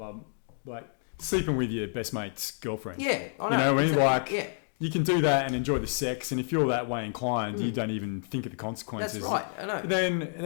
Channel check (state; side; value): silent; right; 58 dB below the other